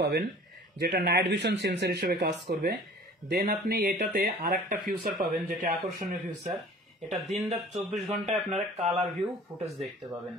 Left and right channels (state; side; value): normal; both; correlation 0.46